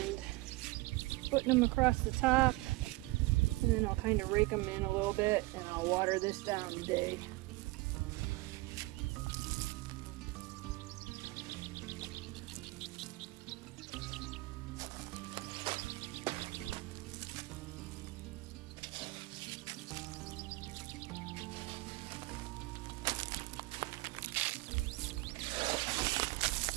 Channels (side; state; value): left; quieter; 22.0 dB